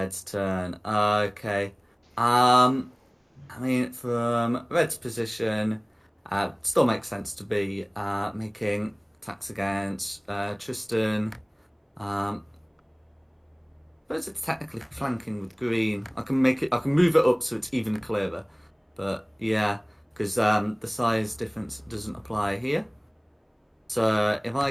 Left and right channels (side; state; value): both; identical; correlation 1.00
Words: turn. Okay. I mean, from Red's position, still makes sense to be making attacks against Tristan. But it's technically flanking with green. I can move it up so it's even clearer. But yeah, because the size difference doesn't apply here. So if I